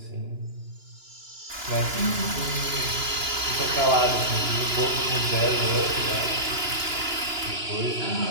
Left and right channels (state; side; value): late; left; 2.9 ms